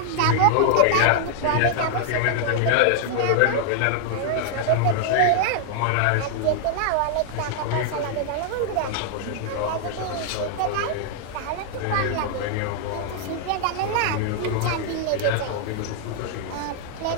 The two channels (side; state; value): both; different; correlation 0.00